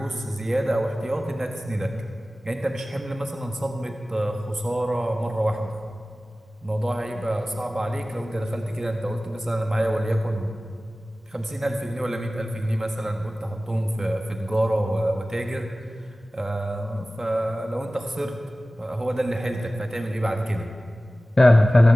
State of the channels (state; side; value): normal; both; correlation 0.97